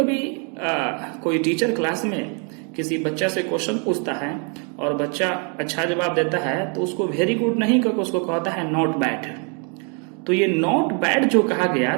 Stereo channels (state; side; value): quieter; left; 37.6 dB